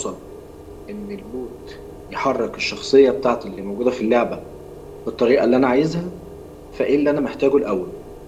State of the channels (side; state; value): both; identical; correlation 1.00